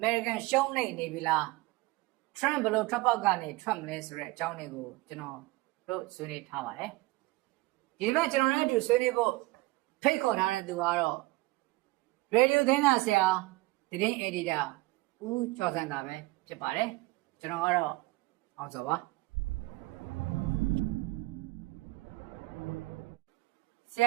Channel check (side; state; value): left; quieter; 21.4 dB